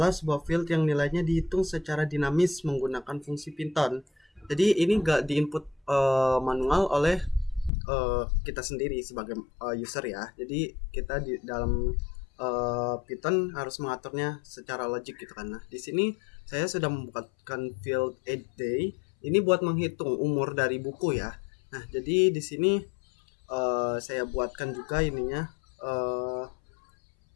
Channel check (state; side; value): drops out; right; at 7.7 s